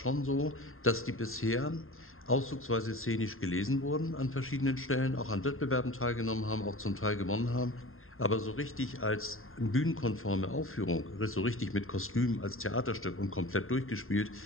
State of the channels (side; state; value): right; late; 0.61 ms